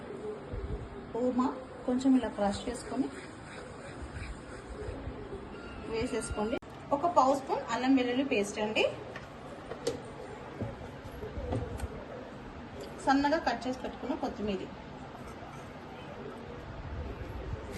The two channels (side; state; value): both; identical; correlation 1.00